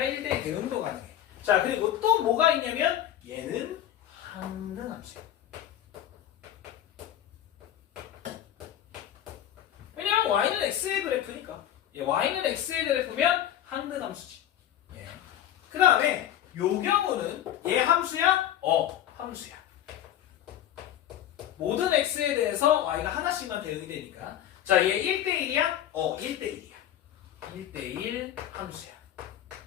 대응도 가능해. 자, 그리고 또 뭐가 있냐면 얘는 항등함수야. 왜냐면 y는 x의 그래프니까. y는 x의 그래프면 항등함수지. 예. 그 다음에 요 경우는 얘 함수야? 함수야. 모든 x에 대해서 y가 하나씩만 대응이 되니까. 자, 얘 1대1이야? 1대1이야. 1대1 함수야.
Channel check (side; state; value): right; quieter; 11.5 dB